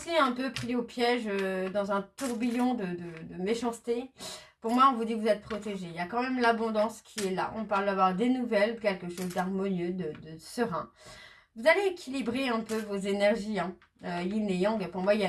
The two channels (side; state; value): both; identical; correlation 1.00